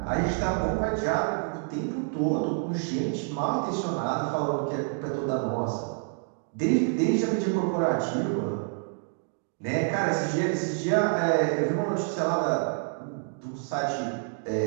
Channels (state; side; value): silent; left; 57 dB below the other